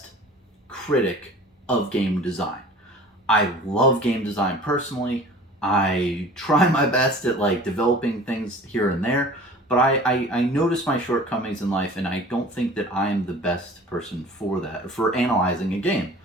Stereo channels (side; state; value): both; normal; correlation 0.44